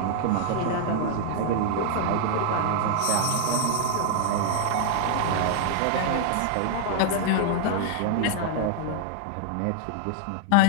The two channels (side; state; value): both; different; correlation -0.01